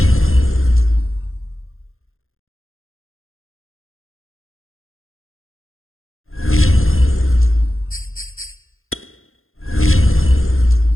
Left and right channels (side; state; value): right; late; 0.61 ms